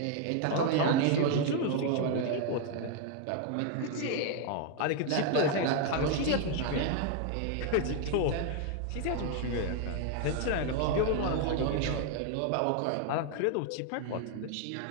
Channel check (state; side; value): different; both; correlation 0.00